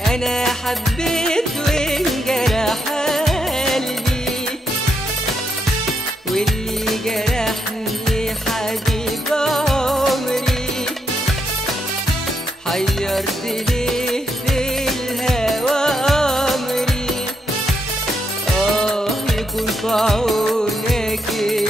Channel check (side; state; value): both; normal; correlation 0.79